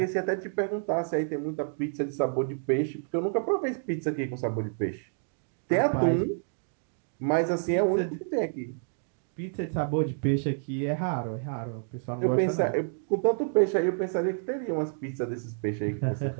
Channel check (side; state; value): left; silent; digital silence